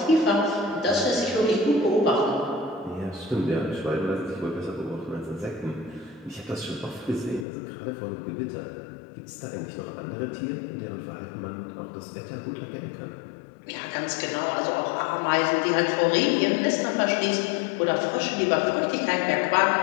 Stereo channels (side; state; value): right; drops out; at 7.5 s